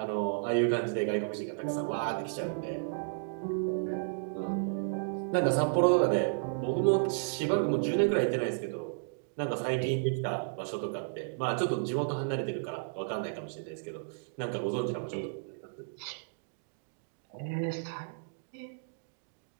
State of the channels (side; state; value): left; silent; digital silence